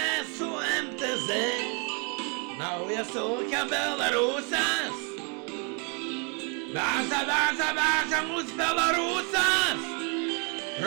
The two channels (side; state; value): left; quieter; 35.3 dB